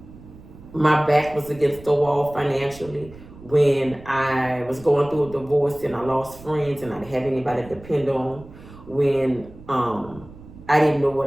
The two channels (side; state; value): right; noise; rumble, 19 dB below the sound